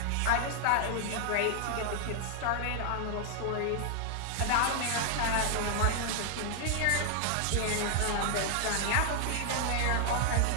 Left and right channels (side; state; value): both; different; correlation 0.00